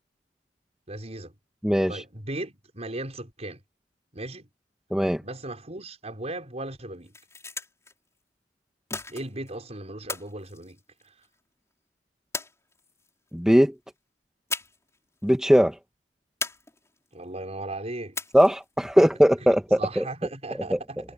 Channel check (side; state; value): both; normal; correlation 0.93